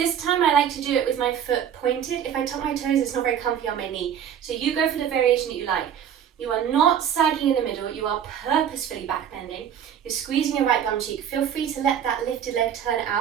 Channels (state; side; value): quieter; left; 9.0 dB